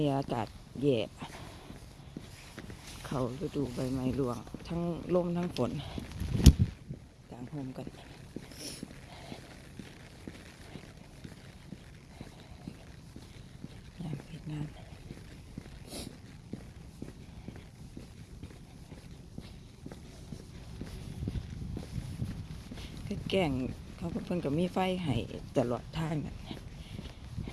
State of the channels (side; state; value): both; identical; correlation 1.00